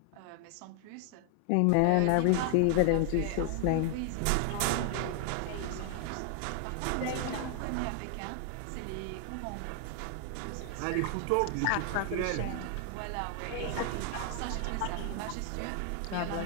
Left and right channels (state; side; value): different; both; correlation 0.00